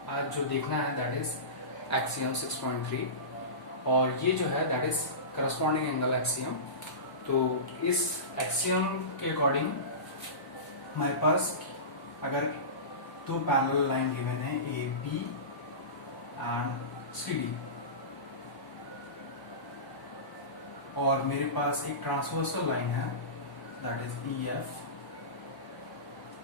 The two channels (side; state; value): right; late; 1.0 ms